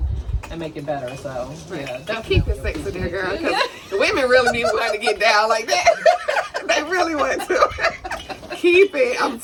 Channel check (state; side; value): identical; both; correlation 1.00